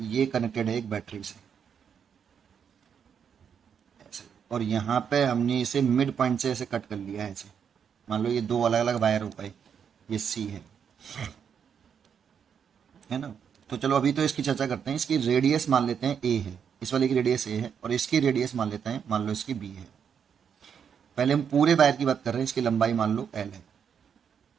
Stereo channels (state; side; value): quieter; left; 7.5 dB